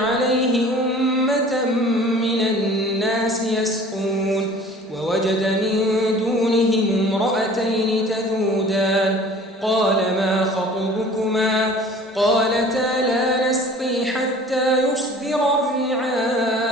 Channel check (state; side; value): normal; both; correlation 0.47